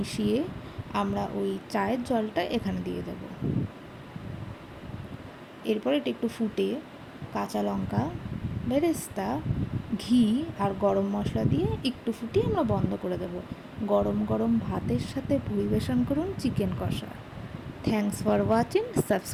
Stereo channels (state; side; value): identical; both; correlation 1.00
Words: আমরা ওই চায়ের জলটা এখানে দিয়ে দেব। এরপর এটা একটু ফুটে কাঁচা লঙ্কা, বেরেস্তা, ঘি আর গরম মশলা দিয়ে একটু ফুটিয়ে আমরা বন্ধ করে দেব। গরম গরম ভাতের সাথে পরিবেশন করুন চিকেন কষা। Thanks for watching,